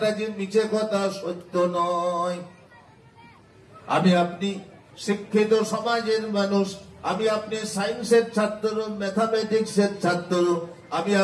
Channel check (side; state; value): both; identical; correlation 1.00